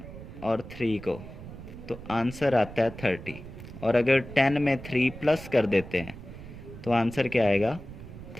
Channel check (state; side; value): noise; right; rumble, 13 dB below the sound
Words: और 3 को तो आंसर आता है 30, और अगर 10 में 3 प्लस कर देते हैं तो आंसर क्या आएगा